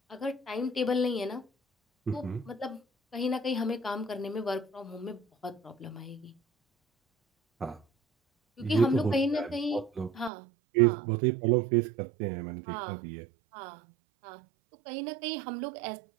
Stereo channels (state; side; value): drops out; left; at 10.3 s